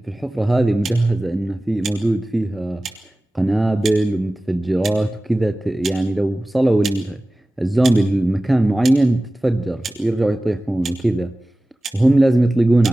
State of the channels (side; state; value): both; normal; correlation 0.97